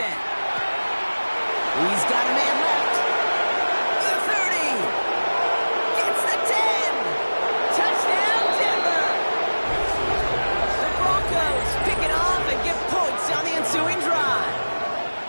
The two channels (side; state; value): both; inverted; correlation -1.00